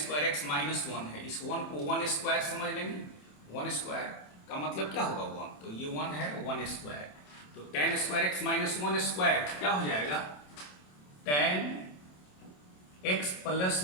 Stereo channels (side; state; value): right; late; 27 ms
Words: एक्स माइनस 1 है, इस 1 को 1 स्क्वायर समझ लेंगे। 1 स्क्वायर का मतलब क्या होगा 1, तो ये 1 है 1 स्क्वायर। तो tan square x minus 1 square क्या हो जाएगा, tan x plus